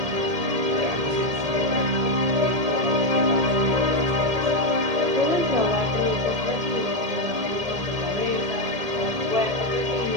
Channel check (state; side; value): late; left; 1.7 ms